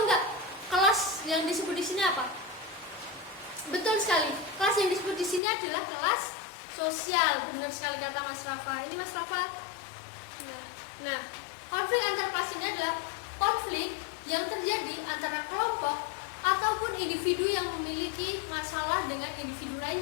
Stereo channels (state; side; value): drops out; right; at 5.4 s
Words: nggak? Kelas yang disebut di sini apa? Betul sekali. Kelas yang disebut di sini adalah kelas sosial. Benar sekali kata Mas Rafa. Ini Mas Rafa. Nah, konflik antar kelas ini adalah konflik yang terjadi antara kelompok ataupun individu yang memiliki masalah dengan individu